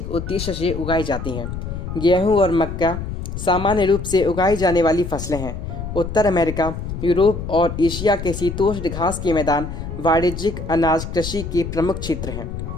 उद्देश्य से उगाई जाती हैं। गेहूं और मक्का सामान्य रूप से उगाई जाने वाली फसलें हैं। उत्तर अमेरिका, यूरोप और एशिया के शीतोष्ण घास के मैदान वाणिज्यिक अनाज कृषि के प्रमुख क्षेत्र हैं।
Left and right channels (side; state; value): left; noise; rumble, 7 dB below the sound